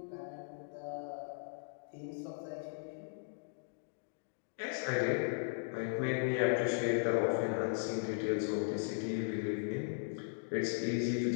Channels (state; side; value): silent; right; digital silence